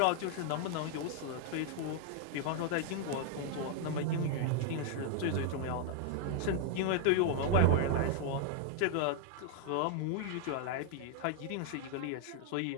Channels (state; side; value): different; both; correlation 0.00